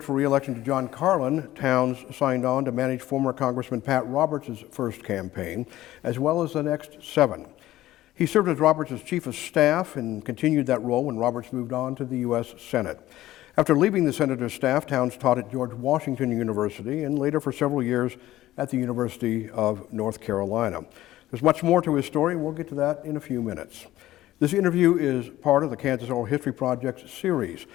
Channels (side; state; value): right; quieter; 15.2 dB